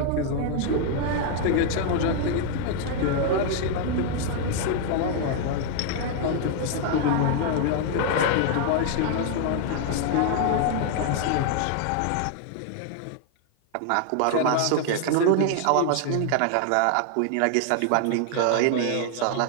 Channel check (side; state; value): both; different; correlation 0.00